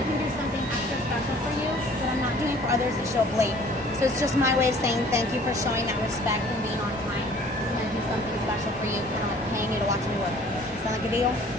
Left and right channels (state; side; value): normal; both; correlation 0.52